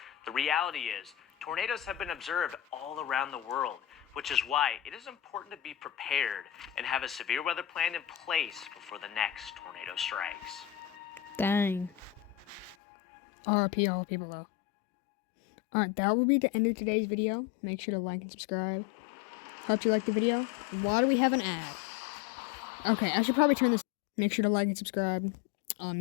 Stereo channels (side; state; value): right; drops out; at 12.8 s